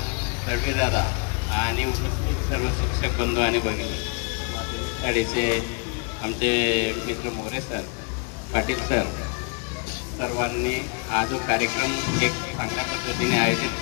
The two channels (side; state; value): right; quieter; 35.4 dB